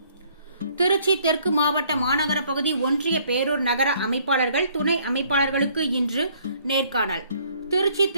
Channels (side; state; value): both; inverted; correlation -0.62